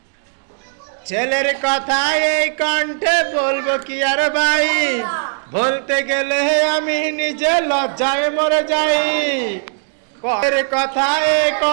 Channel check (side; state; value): left; silent; digital silence